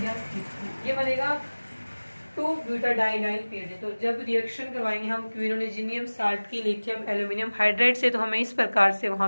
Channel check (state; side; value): inverted; both; correlation -1.00